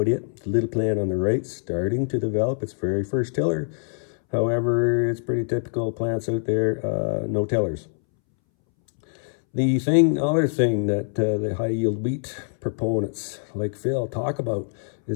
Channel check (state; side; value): silent; right; 62 dB below the other